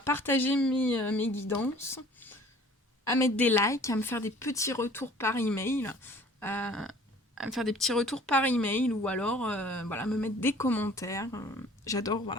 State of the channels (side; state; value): both; normal; correlation 0.51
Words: mes guidances, à mettre des likes, à me faire des petits retours par email, à me faire des petits retours par email ou alors me mettre des commentaires. J'adore,